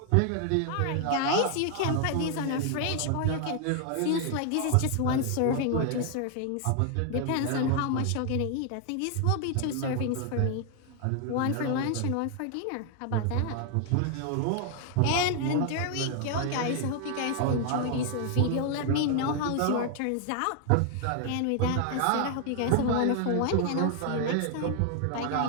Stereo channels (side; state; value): both; different; correlation 0.00